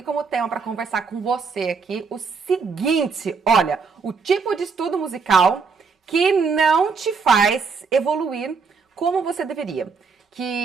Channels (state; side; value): quieter; left; 5.2 dB